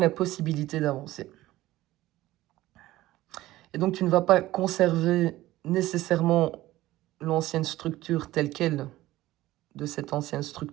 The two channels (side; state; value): left; quieter; 16.4 dB